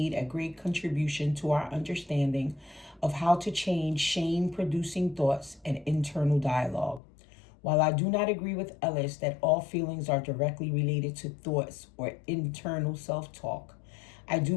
a great contribution to our understanding of how to change shame-producing thoughts and internal dialogue. While I do not agree with Ellis that all feelings are directly related to thoughts or internal self-talk, I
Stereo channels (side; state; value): right; drops out; at 7.0 s